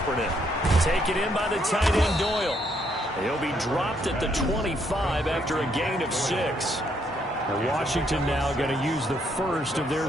Taken in by the tight end Doyle. He'll be dropped at the 25 after a gain of 6. And Washington now going to use the first of their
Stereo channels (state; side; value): normal; both; correlation 0.72